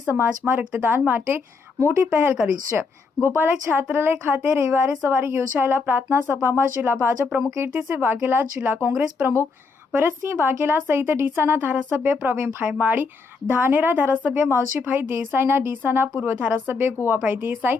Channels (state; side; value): quieter; right; 4.6 dB